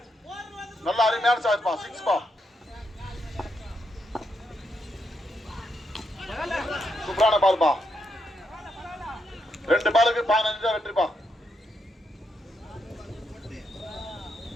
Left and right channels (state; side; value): normal; both; correlation 0.81